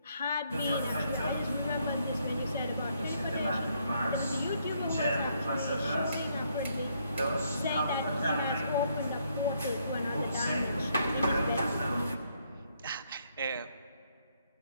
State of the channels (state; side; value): inverted; both; correlation -0.73